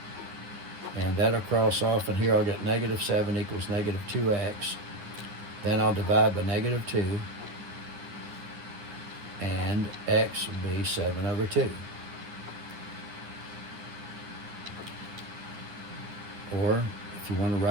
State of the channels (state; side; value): late; left; 9.8 ms